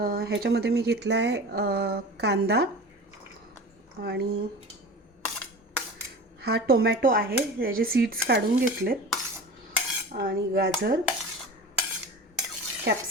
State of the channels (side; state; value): both; normal; correlation 0.35